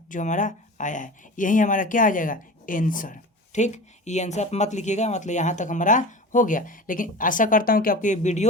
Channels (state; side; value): normal; both; correlation 0.34